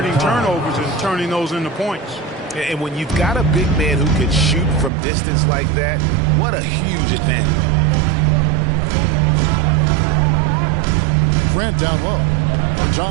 turnovers and turning those into points. And when you've got a big man who can shoot from distance like that, what a huge advantage. Grant down low.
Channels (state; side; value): drops out; left; at 4.9 s